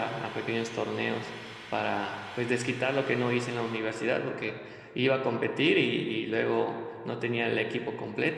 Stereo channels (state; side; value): identical; both; correlation 1.00